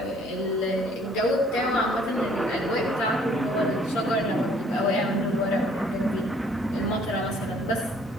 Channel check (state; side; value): normal; both; correlation 0.59